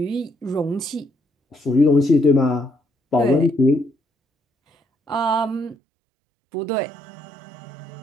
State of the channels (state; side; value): drops out; left; at 5.8 s